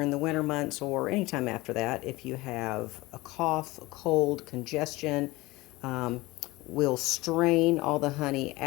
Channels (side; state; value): right; quieter; 20.8 dB